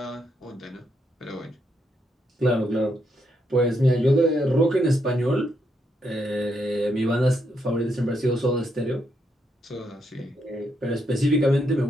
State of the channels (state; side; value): normal; both; correlation 0.78